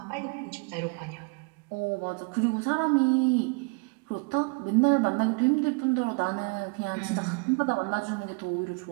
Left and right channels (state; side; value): quieter; left; 32.0 dB